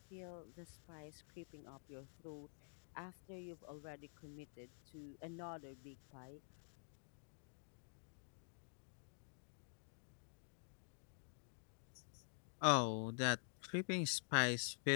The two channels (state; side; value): silent; right; digital silence